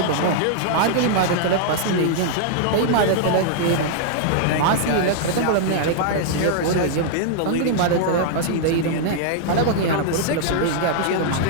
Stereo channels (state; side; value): different; both; correlation -0.01